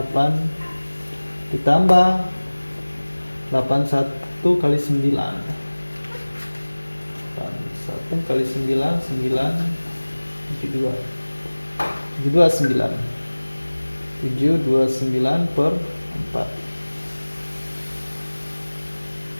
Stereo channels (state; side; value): inverted; both; correlation -1.00